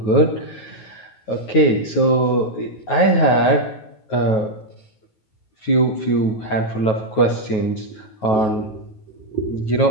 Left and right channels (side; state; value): right; late; 9.3 ms